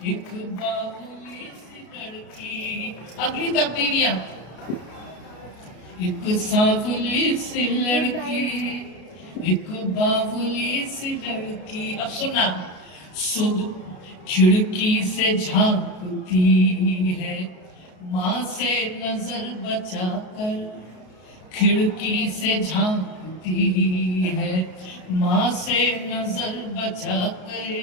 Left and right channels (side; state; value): right; late; 33 ms